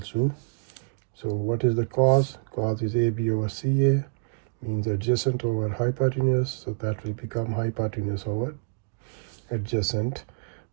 to, so what is the cos? Cos is AB over CA, means adjacent over hypotenuse. So that will become hypotenuse over adjacent,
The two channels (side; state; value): left; silent; digital silence